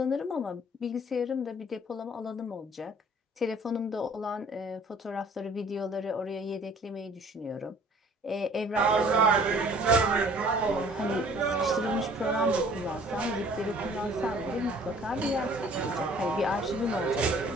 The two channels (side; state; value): both; normal; correlation 0.53